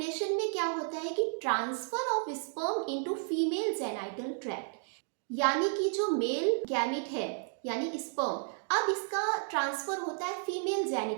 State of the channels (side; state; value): left; silent; 56 dB below the other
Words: में क्या होता है कि transfer of sperm into female genital tract, यानी कि जो मेल गैमेट है यानी स्पर्म, अब इसका ट्रांसफर होता है फीमेल